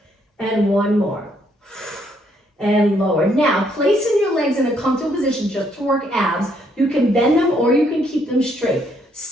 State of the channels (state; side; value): normal; both; correlation 0.71